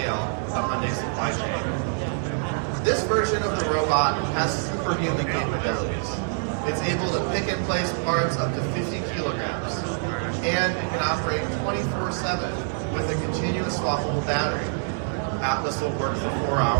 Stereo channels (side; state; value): left; silent; 61 dB below the other